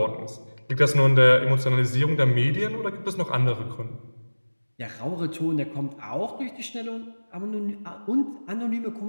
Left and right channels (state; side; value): inverted; both; correlation -1.00